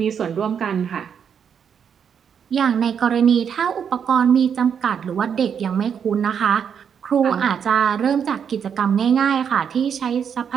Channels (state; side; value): quieter; left; 7.5 dB